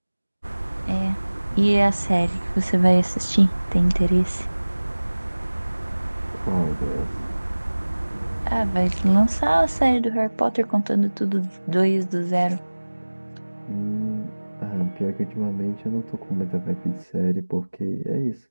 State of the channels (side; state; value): both; inverted; correlation -1.00